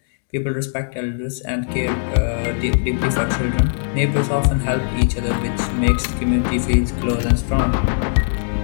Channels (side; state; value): right; silent; digital silence